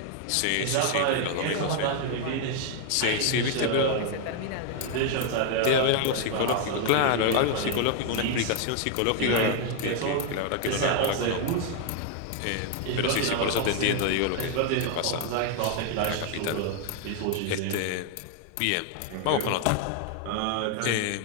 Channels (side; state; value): both; different; correlation 0.00